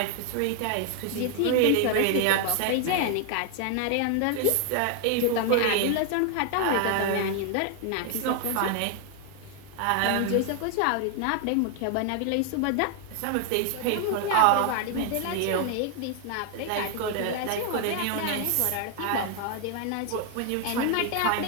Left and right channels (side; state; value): both; different; correlation 0.00